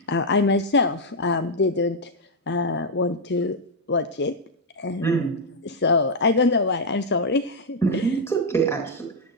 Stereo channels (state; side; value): normal; both; correlation -0.01